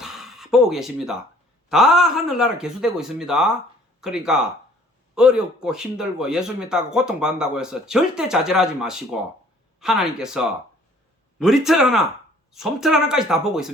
보고 계십니다. 다 하늘나라 개수되고 있습니다. 그러니까 어렵고 힘들고 예수님 따고 고통받는다고 해서 절대 좌절하지 마시고 하나님께서 머리털 하나, 솜털 하나까지 다 보고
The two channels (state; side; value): normal; both; correlation 0.56